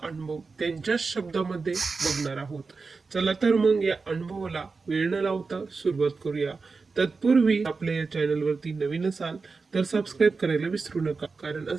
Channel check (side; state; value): left; quieter; 4.4 dB